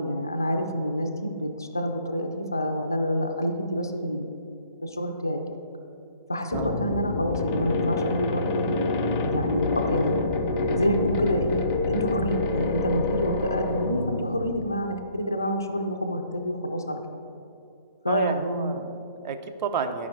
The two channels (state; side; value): inverted; both; correlation -0.61